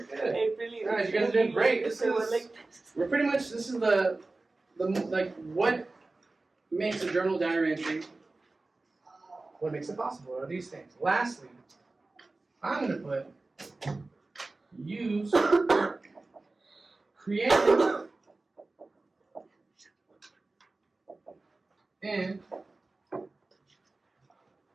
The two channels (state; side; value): quieter; left; 3.3 dB